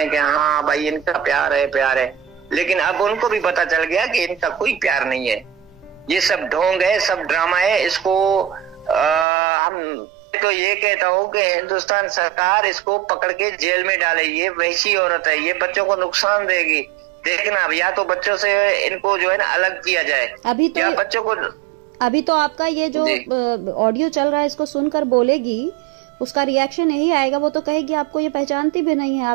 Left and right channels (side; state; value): left; drops out; at 9.2 s